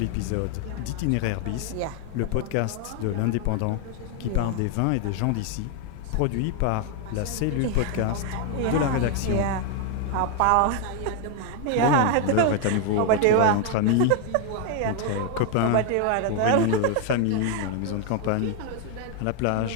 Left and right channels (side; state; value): both; different; correlation 0.01